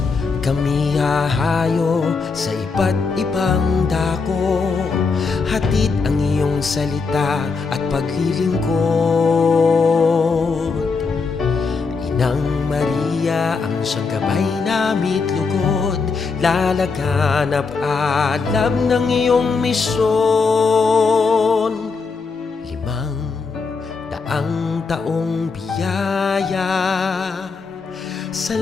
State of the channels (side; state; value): right; quieter; 4.7 dB